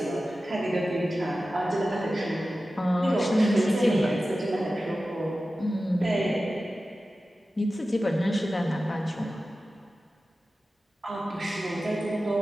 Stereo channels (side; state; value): both; normal; correlation 0.94